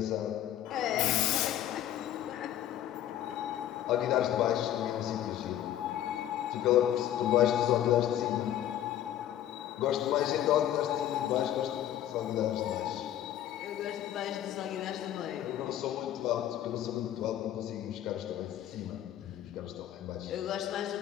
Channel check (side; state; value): right; quieter; 11.7 dB